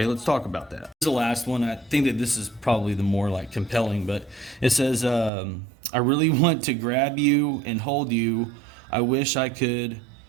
let's talk about that. This is the last one. I think that this is probably the more like compelling, but it says, I really want to grab you and hold you. I wish I could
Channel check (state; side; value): drops out; left; at 5.3 s